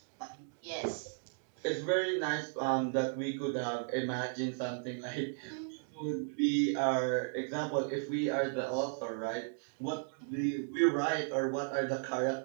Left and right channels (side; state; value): left; silent; digital silence